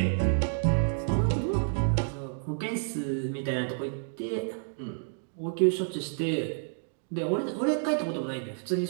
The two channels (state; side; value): silent; left; digital silence